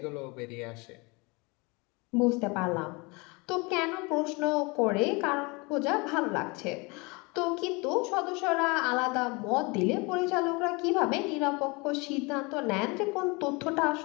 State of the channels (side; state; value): right; quieter; 27.5 dB